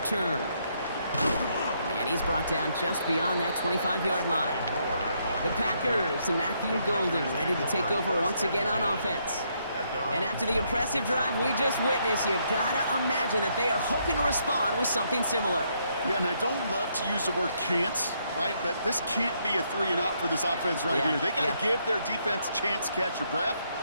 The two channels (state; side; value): inverted; both; correlation -0.74